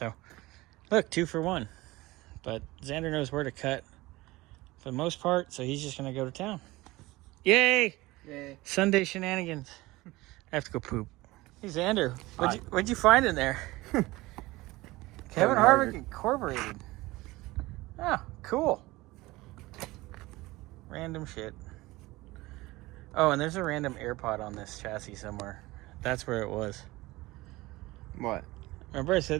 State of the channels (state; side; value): quieter; left; 20.0 dB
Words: look, 2 for 1. But Xander knows where to cut for the most part, so he's just going to go to town. Yay! Yay. Sunday shenanigans. I have to go poop. Hey, Xander, what'd you find in there? Kevin Harvick Incorporated. Oh, cool. Random shit. Oh, and there's a random AirPod on this chassis somewhere. That's where it was. What? Remember I